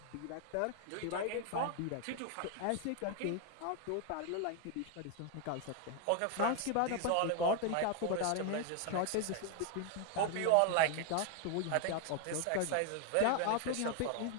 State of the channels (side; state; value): both; different; correlation 0.00